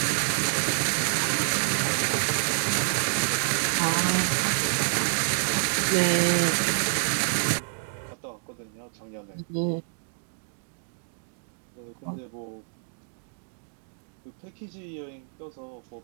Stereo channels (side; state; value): left; silent; digital silence